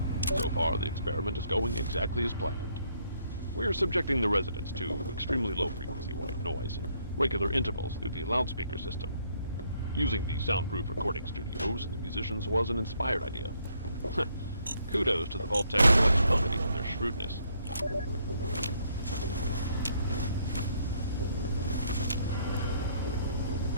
So far, the experiment is going exactly as planned. We're subjecting the residents to extremely low-frequency white noise in regular intervals through the loudspeaker system. Using the soundproof recording studios and the musicians was an inspired idea. Kudos to the Vault-Tec Collection Committee and their shrewdness.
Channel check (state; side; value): inverted; both; correlation -0.70